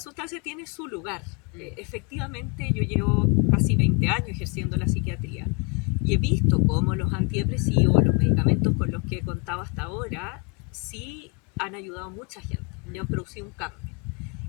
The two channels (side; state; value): right; quieter; 33.3 dB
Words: tiene su lugar. Efectivamente, yo llevo casi 20 años ejerciendo la psiquiatría y he visto cómo los antidepresivos, los medicamentos con los que he contado hasta ahora, sí han ayudado a mucha gente y han producido un cambio.